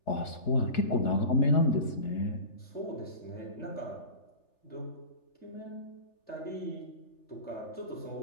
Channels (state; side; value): late; right; 3.3 ms